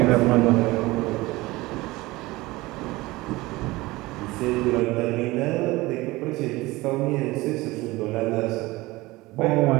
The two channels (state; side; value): quieter; left; 20.4 dB